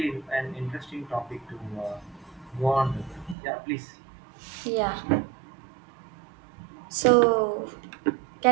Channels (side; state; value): left; drops out; at 3.4 s